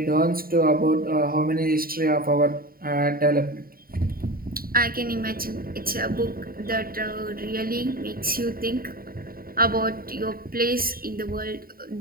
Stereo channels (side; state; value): left; late; 0.43 ms